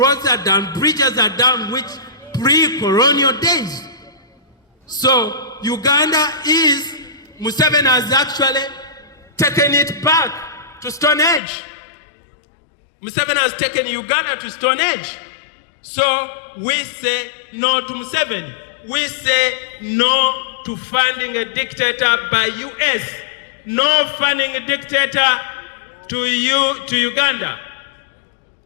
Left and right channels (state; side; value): drops out; right; at 11.4 s